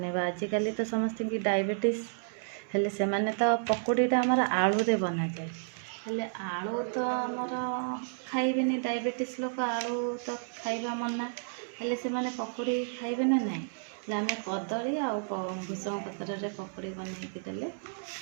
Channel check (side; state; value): left; silent; digital silence